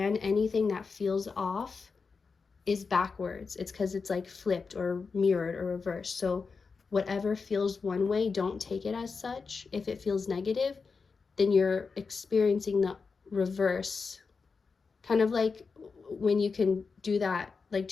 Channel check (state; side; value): quieter; right; 4.9 dB